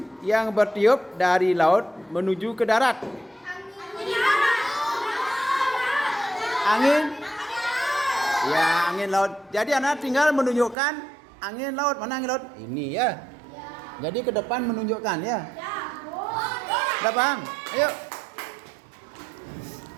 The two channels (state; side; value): drops out; left; at 10.8 s